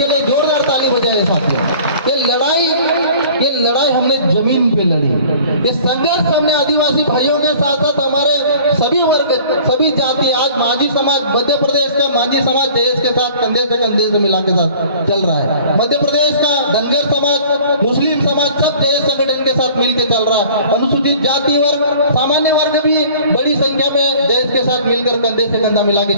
लिए जोरदार ताली बजाए साथियों। ये लड़ाई हमने जमीन पे लड़ी। ये संघर्ष हमने आदिवासी भाइयों के साथ साथ हमारे सभी वर्ग, सभी जाति, आज मांझी समाज, मध्य प्रदेश का मांझी समाज जयेश के साथ कंधे से कंधे से मिला के साथ चल रहा है। मध्य प्रदेश का धनगर समाज, मुस्लिम समाज, सब जयेश संगठन के साथ मिलकर चल रहा है। अनुसूचित जाति वर्ग, सामान्य वर्ग भी बड़ी संख्या में जयेश के साथ मिलकर कंधे से कंधा मिला के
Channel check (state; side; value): inverted; both; correlation -0.48